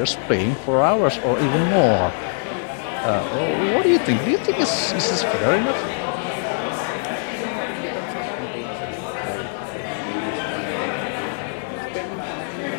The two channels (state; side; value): silent; right; 64 dB below the other